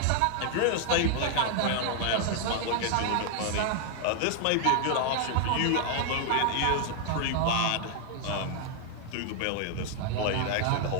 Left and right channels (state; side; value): different; both; correlation 0.00